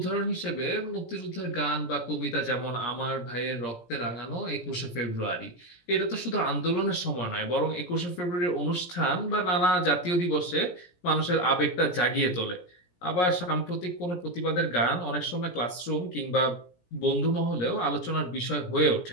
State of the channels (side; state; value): right; late; 17 ms